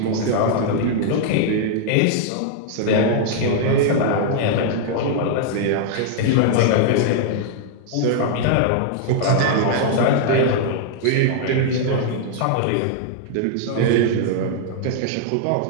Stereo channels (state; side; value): different; both; correlation -0.01